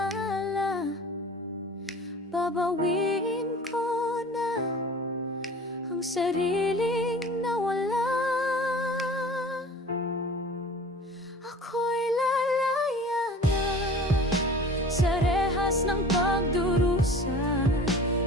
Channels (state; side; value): normal; both; correlation 0.42